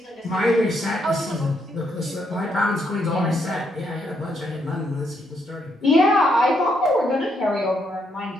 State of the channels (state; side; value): normal; both; correlation 0.76